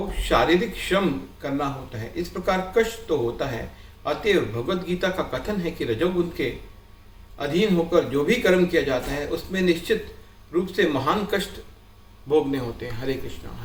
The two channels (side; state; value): both; identical; correlation 1.00